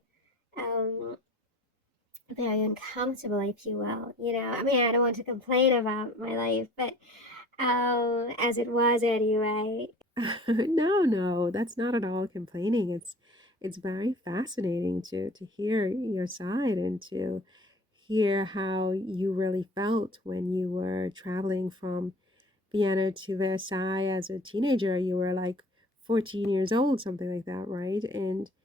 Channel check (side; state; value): both; normal; correlation 0.47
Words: um very uncomfortable, if you will. I mean, I don't want to complain about my life, but as it was anyway. No, no, that's not at all complaining. It's very fascinating to hear your side and to hear how you really felt when you were traveling from Vienna to Versailles as a teenager. You were like 14 years old, something like that, right? And